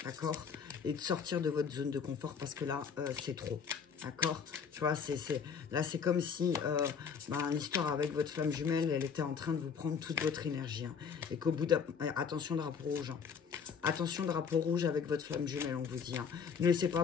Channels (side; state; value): right; quieter; 6.5 dB